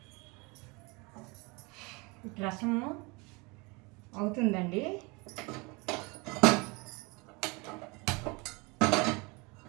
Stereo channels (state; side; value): quieter; left; 27.5 dB